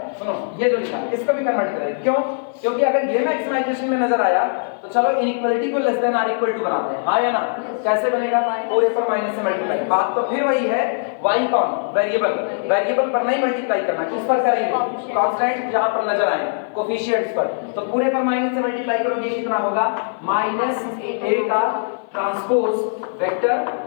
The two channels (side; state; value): right; silent; 57 dB below the other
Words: सुनो, ये जो लिखा है इसको भी कन्वर्ट करें। क्यों? क्योंकि अगर ये मैक्सिमाइजेशन में नजर आया तो चलो इनइक्वालिटी को less than or equal to बनाते हैं, हाँ या ना? कैसे बनेगा? पूरे पर माइनस से मल्टीप्लाई। बात तो फिर वही है, y कौन? वेरिएबल। वेरिएबल पर नहीं मल्टीप्लाई करना, किस पर करेंगे? कांस्टेंट जहां पर नजर आए, कोफिशिएंट्स पर। तो पूरे पर माइनस से मल्टीप्लाई करोगे, कितना होगा? माइनस a का ट्रांसपोज वेक्टर